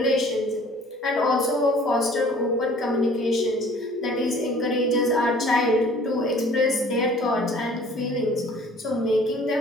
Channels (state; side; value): normal; both; correlation 0.51